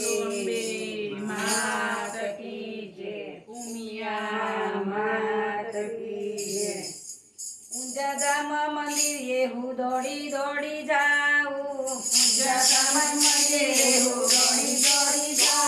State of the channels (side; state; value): both; identical; correlation 1.00